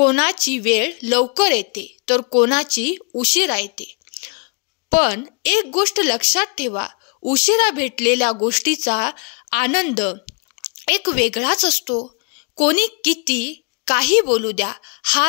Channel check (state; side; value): quieter; right; 33.8 dB